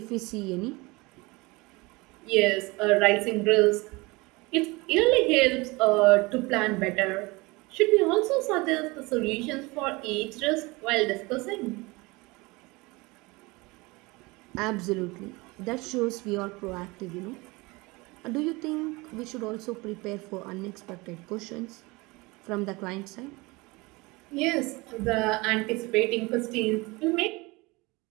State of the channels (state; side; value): quieter; left; 24.0 dB